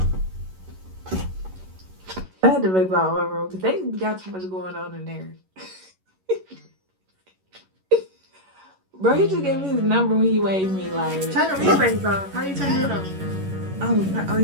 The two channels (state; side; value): late; left; 11 ms